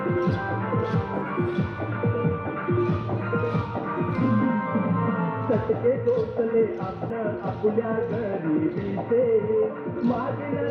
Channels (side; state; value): both; identical; correlation 1.00